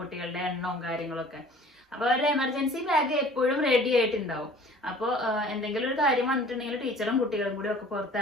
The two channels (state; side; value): normal; both; correlation 0.48